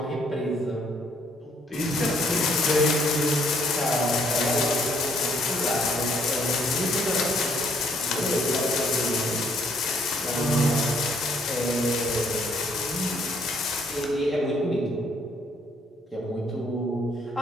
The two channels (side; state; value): both; normal; correlation 0.67